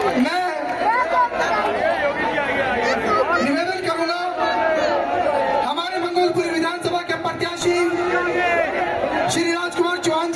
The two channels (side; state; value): both; identical; correlation 1.00